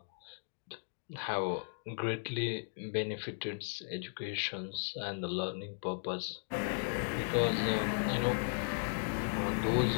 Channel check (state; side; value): silent; right; digital silence